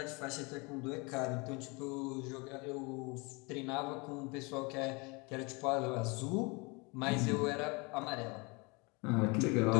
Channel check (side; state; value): right; quieter; 28.6 dB